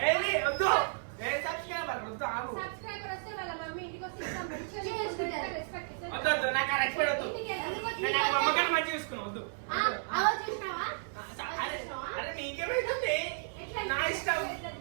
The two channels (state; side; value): silent; left; 56 dB below the other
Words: ఏది వద్దు ఏ సబ్స్క్రైబర్ వద్దు ఆగు సబ్స్క్రైబర్ వస్తే వాళ్ళ మమ్మీ ఇంటికి వస్తే ఇస్తాం. మంచిగా చేసుకుంటారు. రెస్పెక్ట్ ఇస్తాం. వద్దు వద్దు నాకు ఆ రెస్పెక్ట్ వద్దు ఇంటికి ఎందుకు వచ్చి నేను నాకు అమ్మగారిని మంచిగా చూసుకున్నా వద్దు ఆ, అవో చూసినావా? అరే అరే నీకేమైతుంది ఎట్లా నా ఇష్టం ఎట్లా